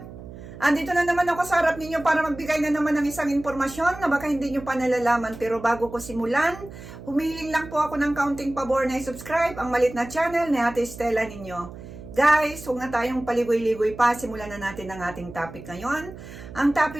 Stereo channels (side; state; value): right; noise; hum, 14 dB below the sound